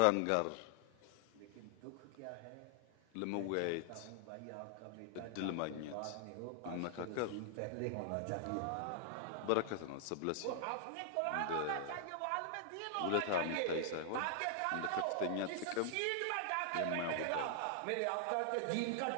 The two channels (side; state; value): both; different; correlation 0.00